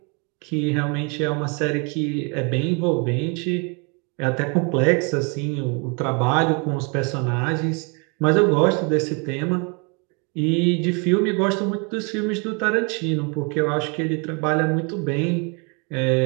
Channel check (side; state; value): left; quieter; 33.5 dB